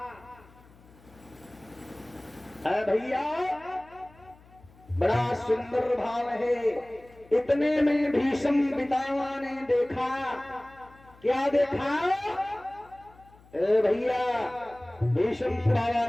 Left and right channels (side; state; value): left; noise; hum, 26 dB below the sound